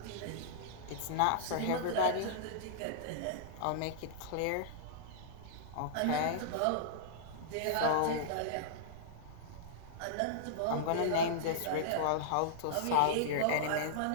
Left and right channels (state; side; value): different; both; correlation -0.02